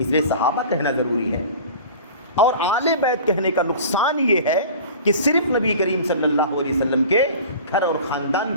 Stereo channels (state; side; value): inverted; both; correlation -0.40